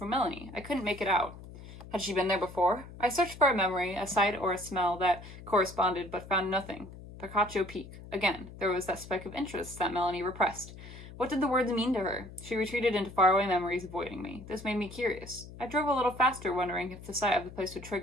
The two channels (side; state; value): left; noise; hum, 15 dB below the sound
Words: Melanie. I couldn't make it out. Had she been there before? I searched for a memory, a sight, or a smell that corresponded, but found nothing. Picacho Peak. Again, there was that speck of interest that Melanie repressed. What did the words mean to her? She retreated into faraway memories, avoiding me. This made me curious. I drove a little faster, wondering if the sight of the place would